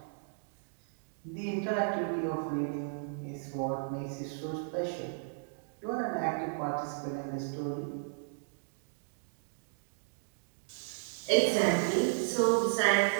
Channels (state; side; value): silent; left; digital silence